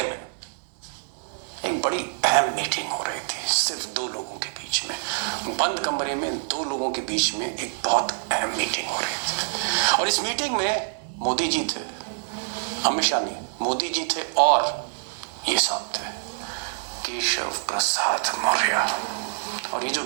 में एक बड़ी अहम मीटिंग हो रही थी, सिर्फ 2 लोगों के बीच में, बंद कमरे में 2 लोगों के बीच में एक बहुत अहम मीटिंग हो रही थी। और इस मीटिंग में मोदी जी थे, अमित शाह नहीं, मोदी जी थे, और ये साहब थे केशव प्रसाद मौर्य। और ये जो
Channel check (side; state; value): left; silent; digital silence